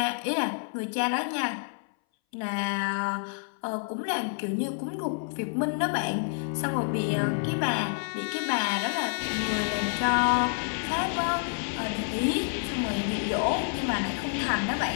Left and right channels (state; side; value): silent; right; 59 dB below the other